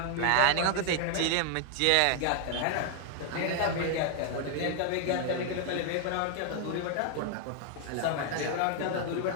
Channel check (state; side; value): different; both; correlation 0.00